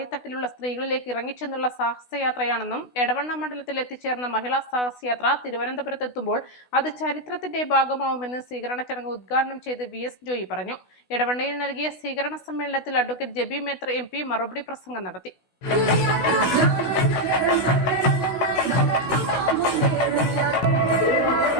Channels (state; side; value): late; right; 16 ms